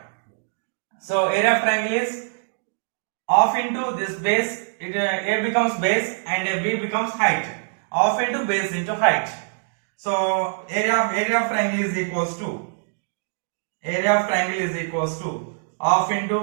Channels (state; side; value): silent; left; digital silence